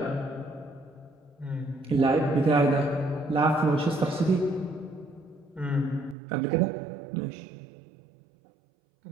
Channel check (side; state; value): left; drops out; at 6.2 s